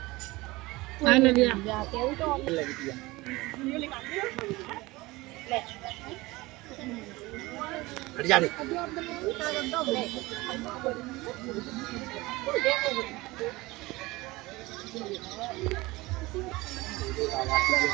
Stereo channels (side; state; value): left; quieter; 21.1 dB